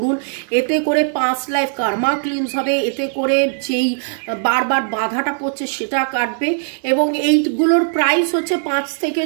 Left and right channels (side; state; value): left; silent; digital silence